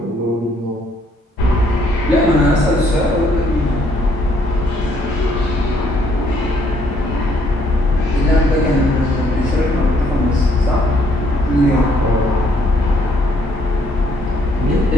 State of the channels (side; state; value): both; normal; correlation 0.68